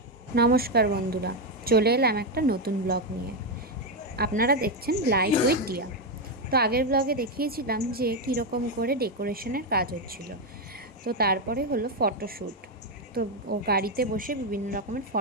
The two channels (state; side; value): normal; both; correlation 0.06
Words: নমস্কার বন্ধুরা, চলে এলাম একটা নতুন ব্লগ নিয়ে। আপনারা দেখছেন লাইফ উইথ ডিয়া। তো আগের ব্লগে দেখিয়েছিলাম যে কীরকম করে ডেকোরেশনের কাজ হচ্ছিল। তো তারপরে হলো ফটোশ্যুট। তো ও গাড়িতে বসে বিভিন্ন রকমের